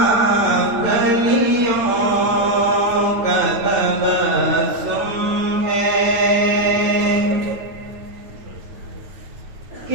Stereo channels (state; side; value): late; left; 9.2 ms